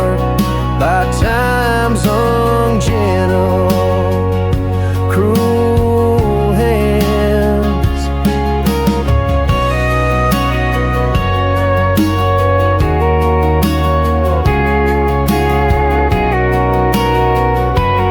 by time's ungentle, cruel hands.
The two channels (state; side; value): identical; both; correlation 1.00